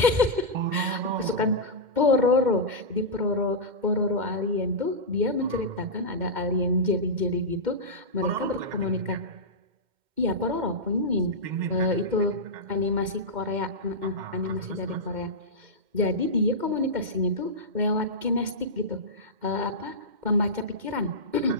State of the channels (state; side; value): late; left; 2.1 ms